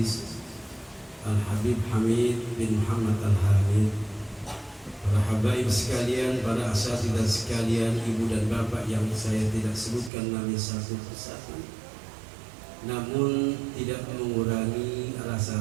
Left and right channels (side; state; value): left; drops out; at 10.1 s